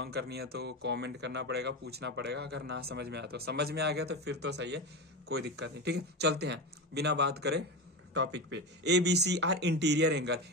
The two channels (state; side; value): normal; both; correlation 0.21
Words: करनी है तो कमेंट करना पड़ेगा, पूछना पड़ेगा। अगर ना समझ में आया तो, समझ में आ गया तो फिर तो सही है, कोई दिक्कत नहीं। ठीक है, चलते हैं बिना बात करे टॉपिक पे। ABC are interior angle.